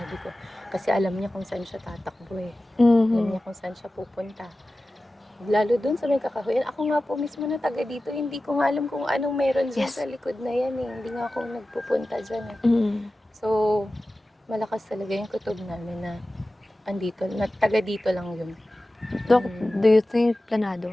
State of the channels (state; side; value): normal; both; correlation 0.95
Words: ko. Kasi alam niya kung saan siya tatakbo eh. Alam Mhm. niya kung saan siya pupunta. Lalo dun sa may kakahuyan. Ako nga po mismo na taga dito, hindi ko nga alam kung anong meron dyan Yes. sa likod na yan eh. Hindi nga ako nagpupunta dyan eh. Mm. So, malakas talaga yung kutob namin na andito, na taga dito lang yun. Doc, do you think